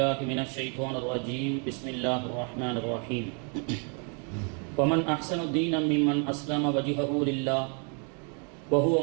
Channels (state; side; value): quieter; left; 38.5 dB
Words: من الشيطان الرجيم بسم الله الرحمن الرحيم. ومن أحسن دينا ممن أسلم وجهه لله وهو